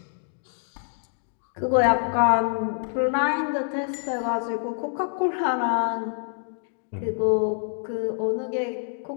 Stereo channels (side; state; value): right; silent; digital silence